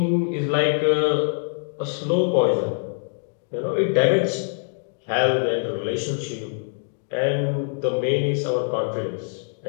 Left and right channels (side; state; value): right; silent; digital silence